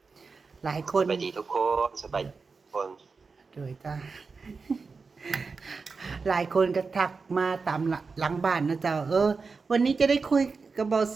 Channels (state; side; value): quieter; left; 4.6 dB